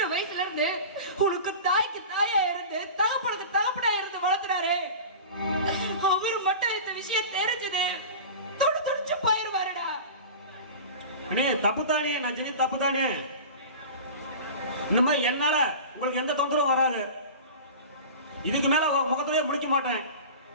வயசுல இருந்து உனக்கு தாய்க்கு தாயா இருந்து தகப்பனுக்கு தகப்பனா இருந்து வளர்த்துனாரு. அவரு மட்டும் இந்த விஷயம் தெரிஞ்சது துடிச்சு போயிருவாருடா. அண்ணே தப்புதானே, நான் செஞ்ச தப்புதானே. இந்த மாதிரி என்னால உங்களுக்கு எந்த தொந்தரவும் வராது. இதுக்கு மேல முகத்திலேயே முடிக்க மாட்டேன்.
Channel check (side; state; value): both; inverted; correlation -0.34